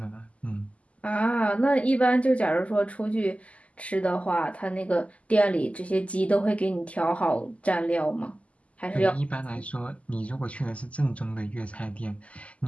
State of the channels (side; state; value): right; late; 0.065 ms